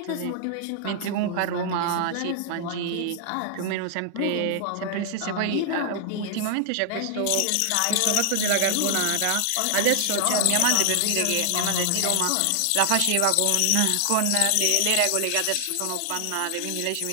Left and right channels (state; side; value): different; both; correlation 0.00